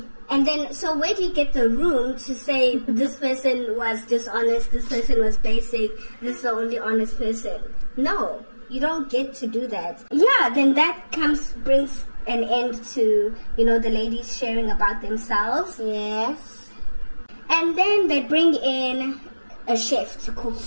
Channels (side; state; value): both; inverted; correlation -1.00